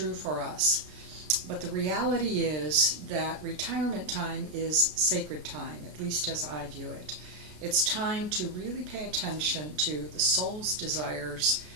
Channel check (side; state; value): left; late; 33 ms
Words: for us. But the reality is that retirement time is sacred time, at least as I view it. It's time to really pay attention to the soul's desires